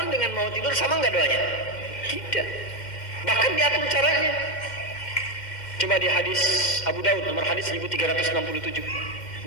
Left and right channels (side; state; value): right; late; 2.1 ms